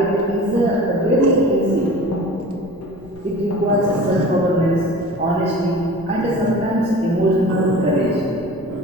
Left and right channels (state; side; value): noise; left; rumble, 23 dB below the sound